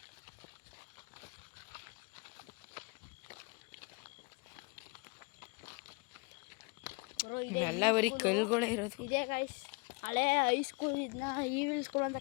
ಬ್ರೋ ಎಲ್ಲ ಬರೀ ಕಲ್ಗಳೇ ಇರೋದು. ಇದೇ ಗೈಸ್ ಹಳೆ ಹೈಸ್ಕೂಲ್, ಇದನ್ನ ಈವಿಲ್ ಸ್ಕೂಲ್ ಅಂತ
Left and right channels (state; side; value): quieter; right; 29.1 dB